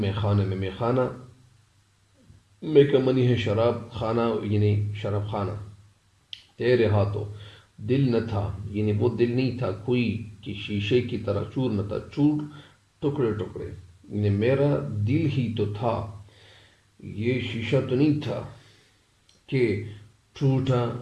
خانے میں خانہ میں کا منی ہے شراب خانہ، یعنی شراب خانہ، تیرے ہاتھوں، دل نہ تھا یعنی وہ دل نہیں تھا کوئی کہ شیشے کی طرح چور نہ تھا، چور ٹکڑے ٹکڑے، یعنی میرا دل ہی تو تھا، یہ شیشہ تو نہیں تھا کہ ٹوٹا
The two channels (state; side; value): identical; both; correlation 1.00